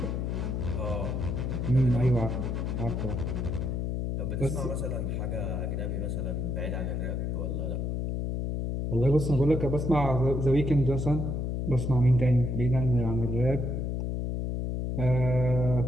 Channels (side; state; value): left; noise; hum, 1 dB below the sound